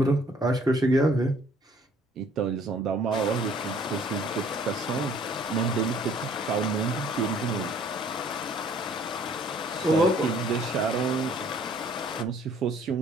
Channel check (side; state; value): both; normal; correlation 0.58